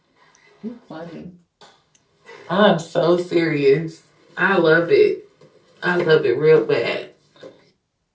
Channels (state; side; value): identical; both; correlation 1.00